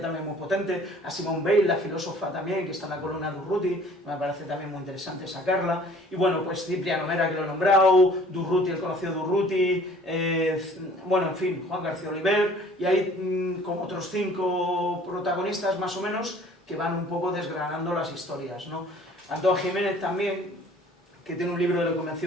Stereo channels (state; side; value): normal; both; correlation 0.52